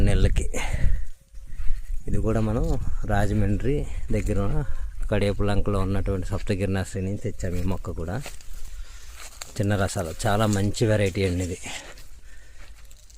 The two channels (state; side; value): identical; both; correlation 1.00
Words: నెలలకి. ఇది కూడా మనం రాజమండ్రి దగ్గర కడియపులంకలో ఉన్నటువంటి సప్తగిరి నర్సరీ నుంచి తెచ్చాము. ఈ మొక్క కూడా చిన్న రసాలు, చాలా మంచి వెరైటీ అండి ఇది.